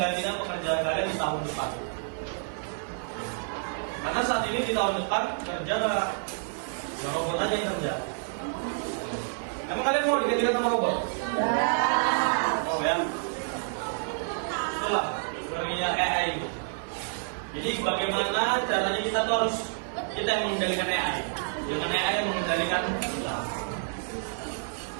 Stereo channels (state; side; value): silent; left; 59 dB below the other